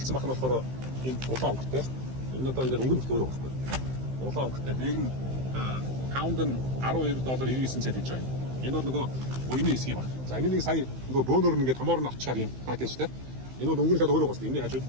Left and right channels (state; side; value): late; left; 15 ms